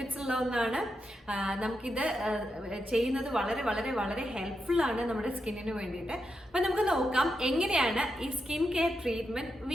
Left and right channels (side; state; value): both; normal; correlation 0.85